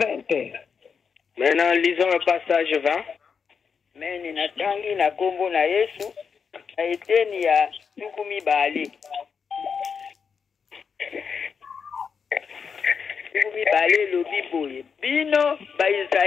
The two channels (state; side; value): quieter; right; 6.2 dB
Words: Maintenant, lisons le passage 20. Amen. Natangi na kombo na Yesu. Na eteni ya tukumi bali. Tukumi bali lobi boye. Bino ba